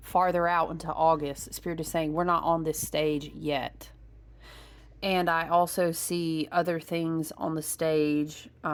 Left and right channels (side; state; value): both; identical; correlation 1.00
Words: out into August. Spirit is saying we're not on this stage yet. And I also see other things on the stage.